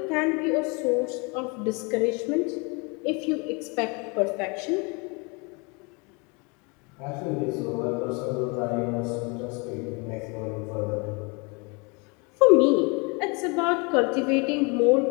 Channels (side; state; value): right; quieter; 30.7 dB